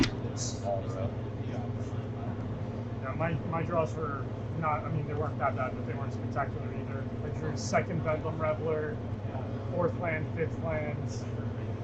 drew this all in a row. Yeah, my draws were not, I mean, they weren't that bad, but they weren't spectacular either. I drew 2nd Bedlam Reveler, 4th land, 5th lands,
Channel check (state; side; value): identical; both; correlation 1.00